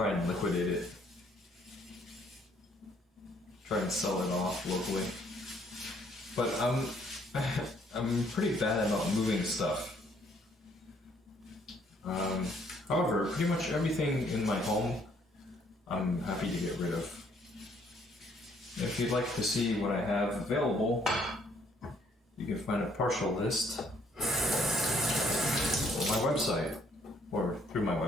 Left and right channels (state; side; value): normal; both; correlation 0.65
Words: and liquidate it. Try and sell it off locally. But I'm pretty bad about moving stuff. However, pretty much everything in my home I'm happy to get rid of. If you'd like to see what I have available, you can find a partial list on my website, or through my